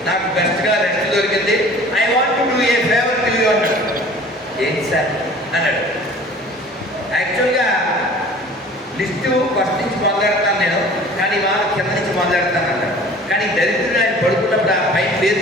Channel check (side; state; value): both; normal; correlation 0.46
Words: నాకు బెస్ట్గా రెస్ట్ దొరికింది, I want to do a favour to you అన్నాడు. ఏంటి సార్ అన్నాడు. యాక్చువల్గా లిస్టు ఫస్ట్ నుంచి మొదలెడతాను నేను, కానీ వాళ్ళ కింద నుంచి మొదలెడతాను అన్నాడు. కానీ దరిద్రుడు ఆయన పడుకున్నప్పుడు ఆ పైన పేరు